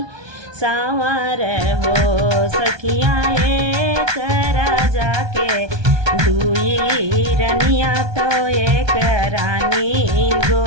सांवर हो। सखिया एक राजा के दुई रनिया तो एक रानी,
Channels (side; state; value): left; late; 1.2 ms